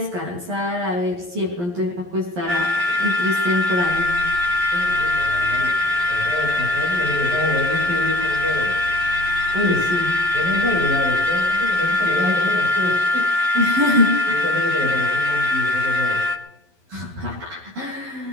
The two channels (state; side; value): late; left; 11 ms